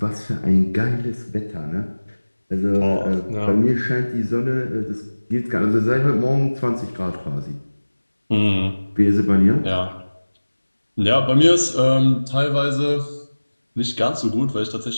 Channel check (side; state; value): both; inverted; correlation -1.00